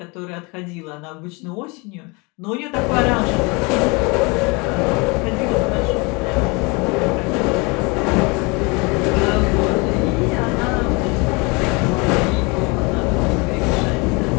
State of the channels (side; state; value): right; quieter; 28.5 dB